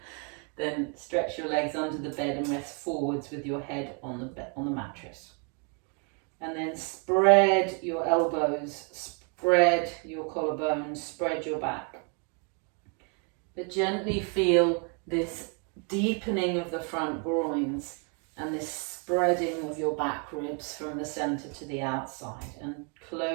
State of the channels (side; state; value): left; quieter; 37.6 dB